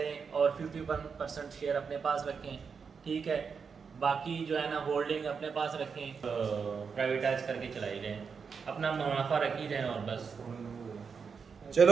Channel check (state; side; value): quieter; left; 5.8 dB